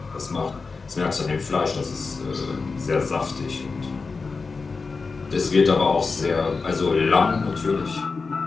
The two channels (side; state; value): right; quieter; 4.4 dB